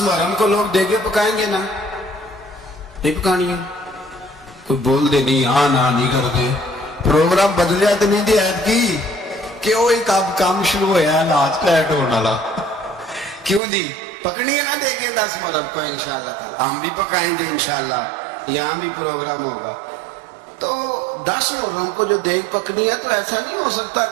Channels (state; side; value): drops out; left; at 13.6 s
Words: کو لوگ دیگے پکائیں گے نا، نہیں پکانی ہے، کوئی بول دے نہیں، ہاں نہ نہیں کر دے، پروگرام بدلیا تو نہیں دی عید کی کہ وہ ایک اب کام شروع ہوا ہے لاج لیٹ ہونے والا، کیوں دی پکڑی ہے نا دیکھیں 10 محرم کو انشاءاللہ تعالی، ہم بھی پکائیں گے انشاءاللہ، یہاں بھی پروگرام ہوگا۔ تو 10 محرم کو جو دیگ پکنی ہے تو ایسا نہیں ہو سکتا